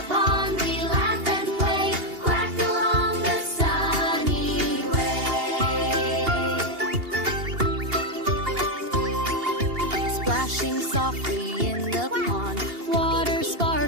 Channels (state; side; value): late; left; 2.8 ms